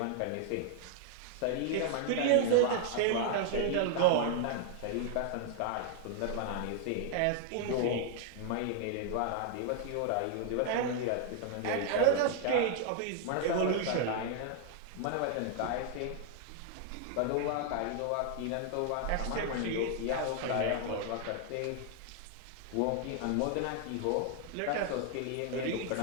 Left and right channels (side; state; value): both; different; correlation 0.00